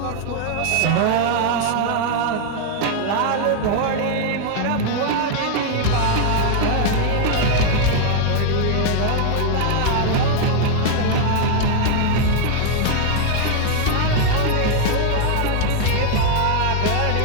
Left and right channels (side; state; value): both; different; correlation 0.00